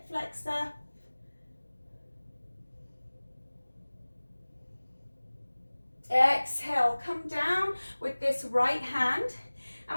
flexor. Exhale, come down with this right hand.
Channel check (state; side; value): inverted; both; correlation -1.00